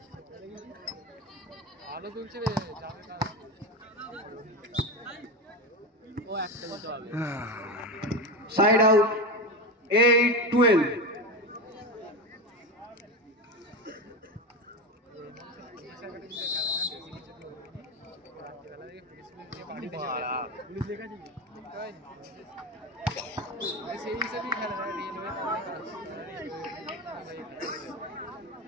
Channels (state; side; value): normal; both; correlation 0.19